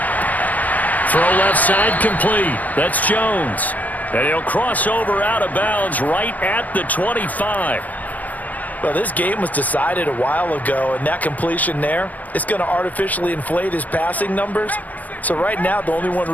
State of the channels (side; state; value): right; late; 0.078 ms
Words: Throw left side complete. That's Jones. And he'll cross over out of bounds right at the 25. Well, this game was decided a while ago, and that completion there, it's going to artificially inflate his passing numbers. So right now, the only one